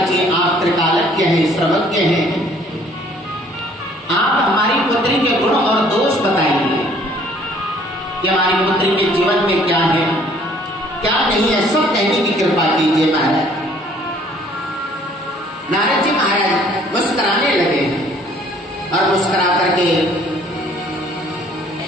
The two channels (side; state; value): both; normal; correlation 0.58